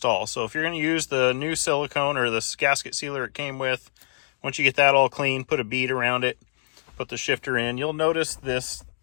So if you're going to use the new silicone or the gasket sealer it came with, once you get that all clean, put a bead around it, put the shifter in. You'll notice this,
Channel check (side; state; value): right; silent; digital silence